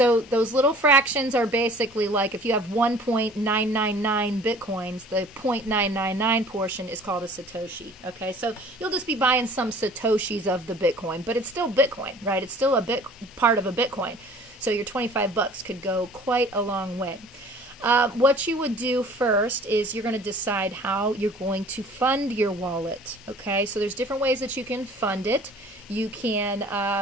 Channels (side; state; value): both; normal; correlation 0.49